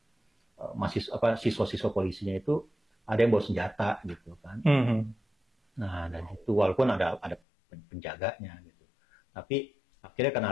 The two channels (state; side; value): drops out; right; at 7.4 s